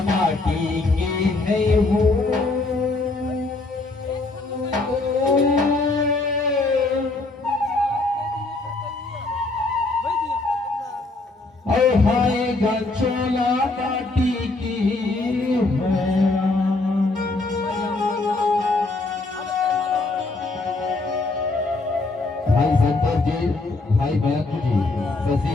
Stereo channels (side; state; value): right; quieter; 3.3 dB